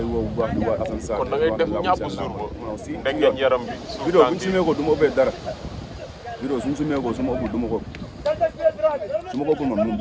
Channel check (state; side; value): identical; both; correlation 1.00